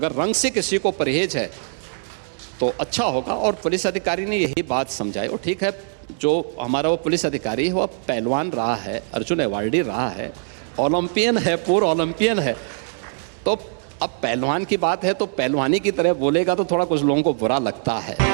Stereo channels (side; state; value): left; silent; 64 dB below the other